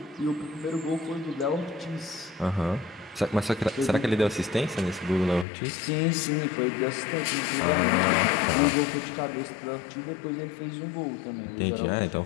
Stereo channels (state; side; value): drops out; right; at 5.5 s